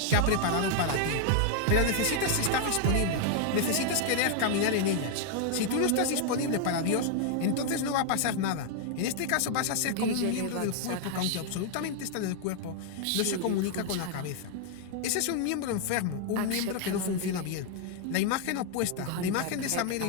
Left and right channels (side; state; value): both; different; correlation 0.00